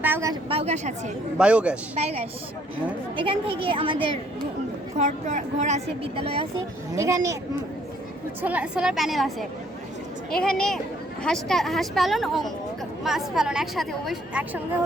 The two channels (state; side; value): normal; both; correlation 0.64